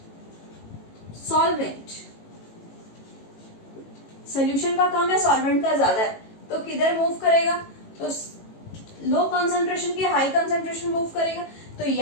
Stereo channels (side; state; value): right; late; 18 ms